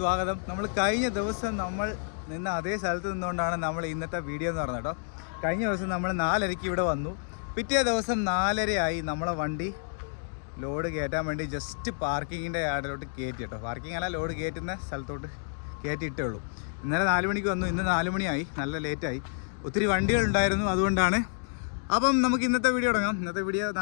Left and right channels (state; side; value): silent; right; digital silence